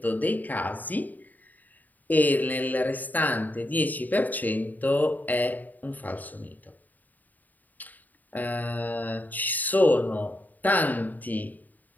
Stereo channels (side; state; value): right; late; 0.083 ms